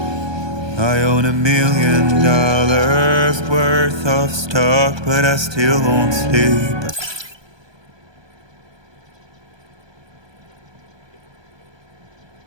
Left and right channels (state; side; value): late; left; 1.2 ms